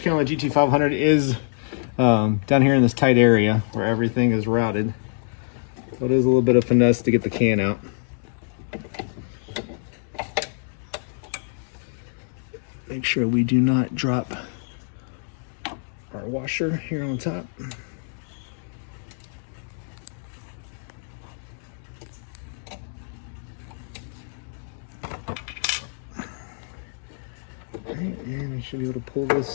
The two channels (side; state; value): right; silent; digital silence